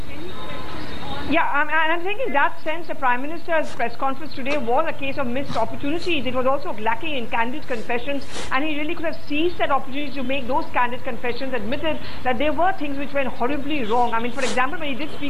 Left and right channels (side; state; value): right; noise; hiss, 29 dB below the sound